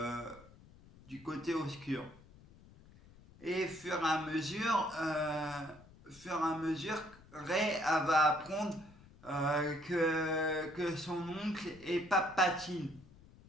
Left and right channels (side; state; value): left; noise; rumble, 23 dB below the sound